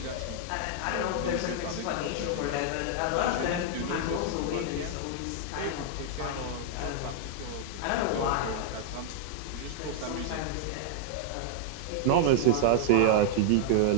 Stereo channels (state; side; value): different; both; correlation 0.00